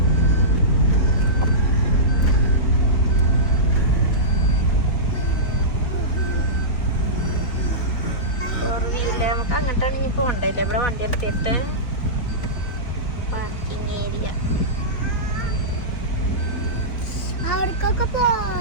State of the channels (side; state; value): right; late; 3.8 ms